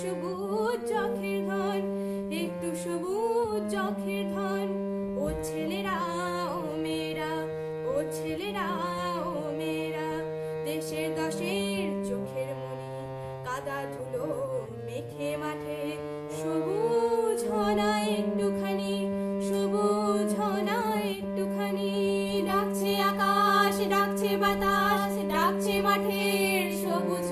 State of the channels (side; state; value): both; identical; correlation 1.00